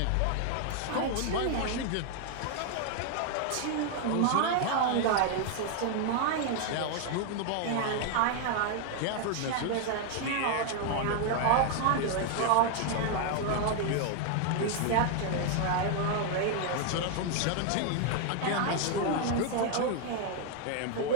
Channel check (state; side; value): different; both; correlation 0.00